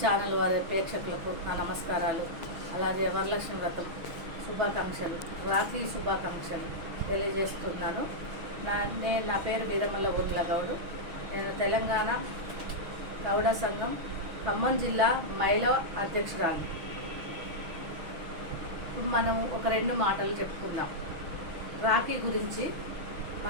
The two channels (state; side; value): late; left; 6.1 ms